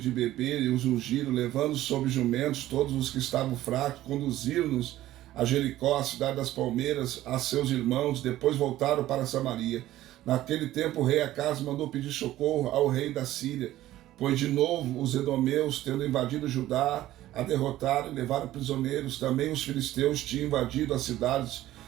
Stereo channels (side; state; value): left; quieter; 14.6 dB